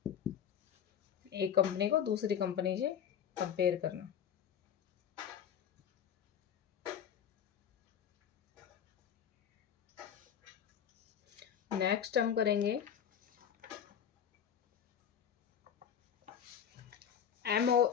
एक कंपनी को दूसरी कंपनी से कंपेयर करना। नेक्स्ट हम करेंगे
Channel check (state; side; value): quieter; right; 8.5 dB